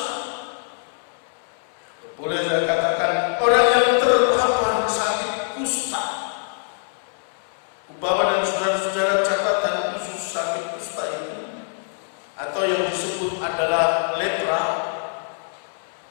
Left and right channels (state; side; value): silent; right; 61 dB below the other